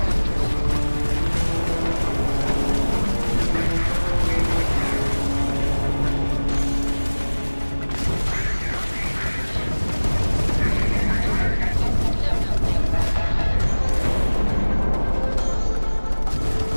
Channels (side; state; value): both; inverted; correlation -1.00